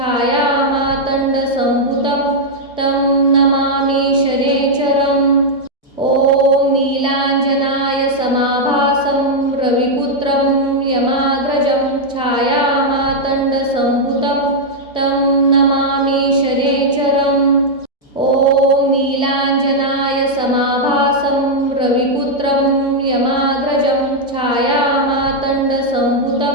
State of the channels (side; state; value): both; normal; correlation -0.03